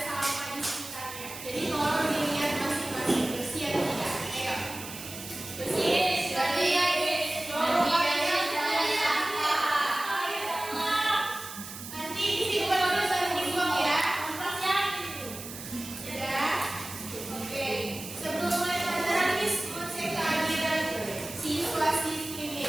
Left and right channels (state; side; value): noise; right; hiss, 11 dB below the sound